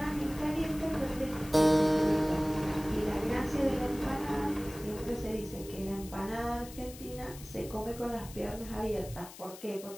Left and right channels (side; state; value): left; noise; hiss, 16 dB below the sound